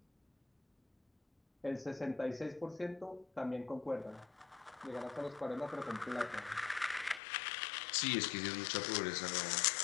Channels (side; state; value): right; drops out; at 7.2 s